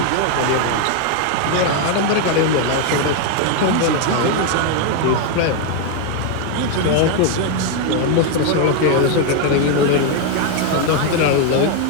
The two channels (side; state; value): both; different; correlation 0.01